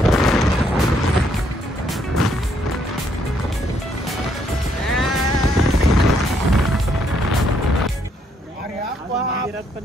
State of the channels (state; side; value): normal; both; correlation 0.72